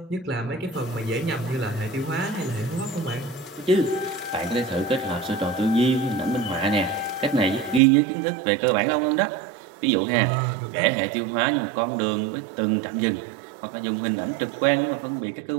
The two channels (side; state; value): left; drops out; at 7.8 s